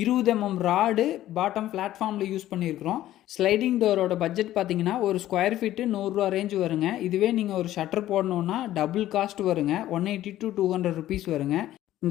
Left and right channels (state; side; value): quieter; right; 13.7 dB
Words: 20 mm ராடு பாட்டம் பிளாட்ஃபார்மில் யூஸ் பண்ணியிருக்கிறோம். ஸ்லைடிங் டோரோட பட்ஜெட் பார்த்தீங்கன்னா ஒரு ஸ்கொயர் ஃபீட்டு 100 ரூபா ரேஞ்சு வருங்க. இதுவே நீங்கள் ஒரு ஷட்டர் போடணுன்னா டபுள் காஸ்ட் வருங்க, 180 to 200 ருபீஸ் வருங்க.